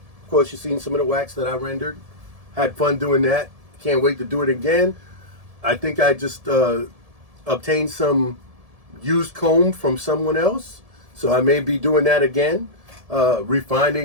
Of course, you've seen some of the wax that I rendered. Had fun doing that. Can't wait to do it again. I think I just obtained some used comb from someone else, so I may be doing that again,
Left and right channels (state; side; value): late; left; 1.7 ms